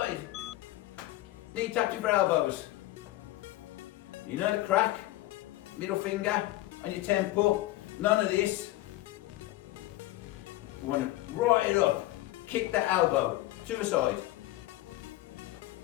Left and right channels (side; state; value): right; quieter; 17.0 dB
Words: Knee touching for elbows. You know the crack? Middle finger on your temple. None of this. We want to right it up. Kick that elbow to the side.